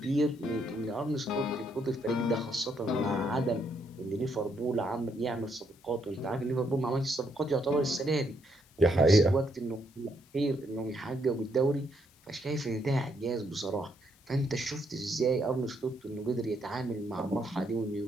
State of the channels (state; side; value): noise; left; hiss, 30 dB below the sound